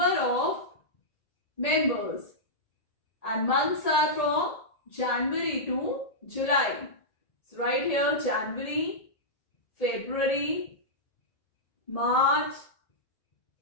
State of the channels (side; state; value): right; late; 1.8 ms